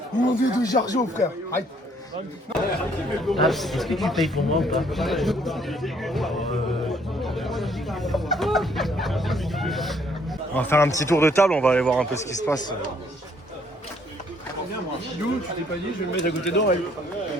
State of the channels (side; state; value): both; normal; correlation 0.65